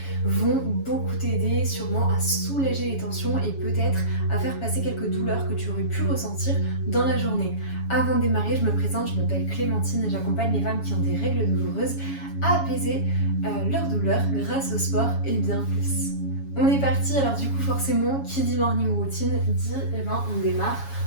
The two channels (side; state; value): right; late; 7.2 ms